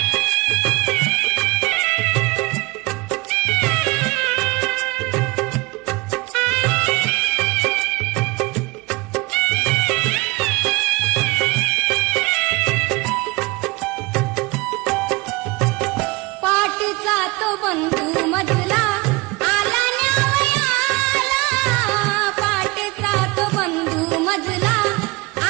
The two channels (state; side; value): quieter; left; 24.1 dB